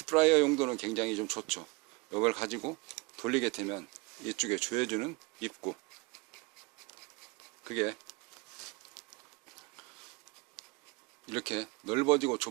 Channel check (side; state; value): left; quieter; 25.8 dB